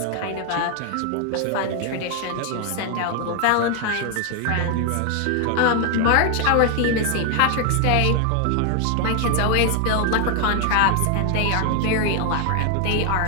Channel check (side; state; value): both; different; correlation 0.00